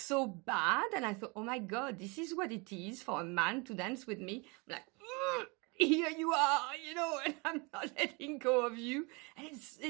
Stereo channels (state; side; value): quieter; left; 29.2 dB